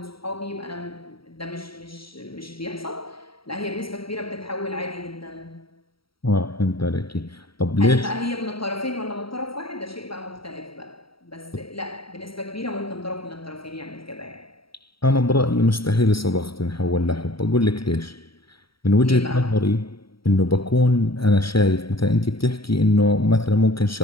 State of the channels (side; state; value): right; late; 0.75 ms